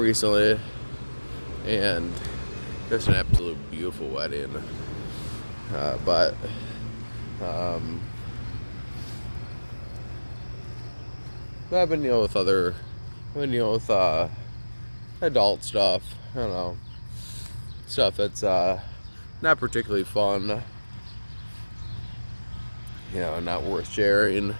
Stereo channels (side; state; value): both; inverted; correlation -1.00